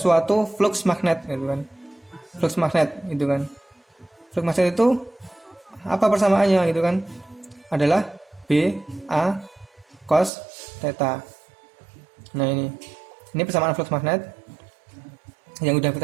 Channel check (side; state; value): left; drops out; at 10.3 s